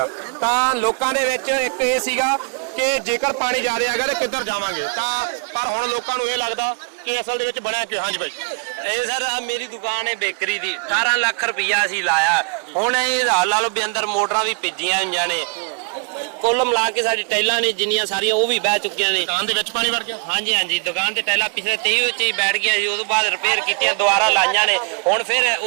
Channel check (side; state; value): left; quieter; 38.2 dB